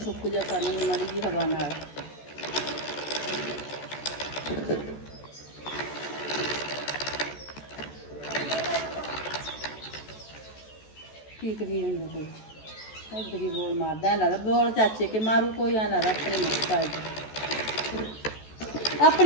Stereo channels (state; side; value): late; right; 14 ms